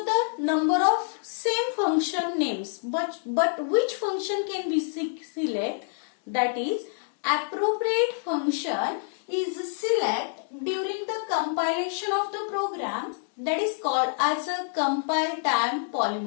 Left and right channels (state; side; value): silent; right; digital silence